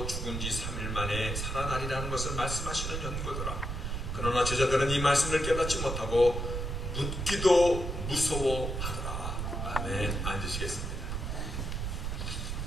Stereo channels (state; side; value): noise; right; rumble, 3 dB below the sound